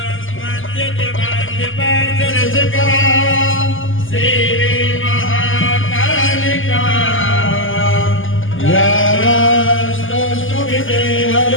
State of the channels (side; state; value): right; late; 0.58 ms